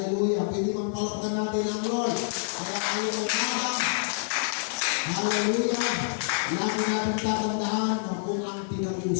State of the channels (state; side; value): silent; right; 60 dB below the other